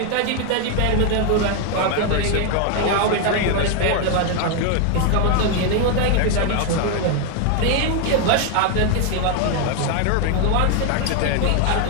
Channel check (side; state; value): both; different; correlation 0.01